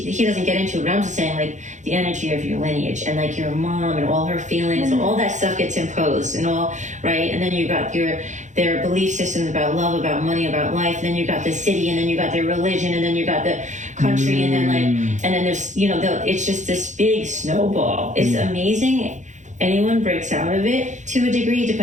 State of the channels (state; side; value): late; left; 0.35 ms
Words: doesn't get into, but I'm just saying, like, the energy of your lineage and, like, your mom and all her feelings, all that stuff gets imposed and all, right? And then you got their belief systems about love, about money, about life, and then you got the city, and then you got their religion, and then you got the country, and then, like, and then there's, it's just this big snowball. It's amazing. Anyone breaks out of it to a degree,